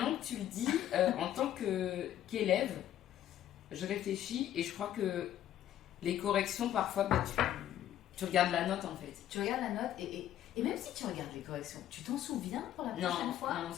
que tu le dis, en tant qu'élève, je réfléchis et je crois que les corrections, parfois, tu regardes la note en fait. Tu regardes la note et même si tu regardes les corrections, tu t'en souviens pour la prochaine fois? Non, on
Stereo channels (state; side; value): quieter; right; 11.7 dB